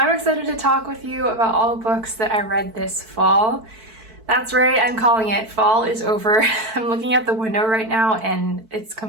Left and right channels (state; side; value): late; left; 4.5 ms